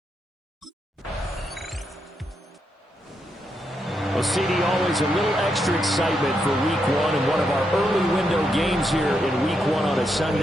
CD, always a little extra excitement for week 1, and one of our early window games here in week 1 on a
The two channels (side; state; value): both; normal; correlation 0.81